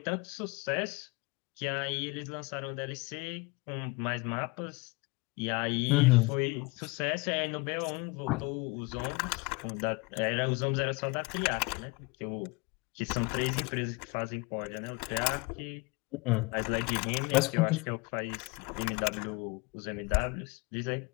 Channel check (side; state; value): right; quieter; 26.6 dB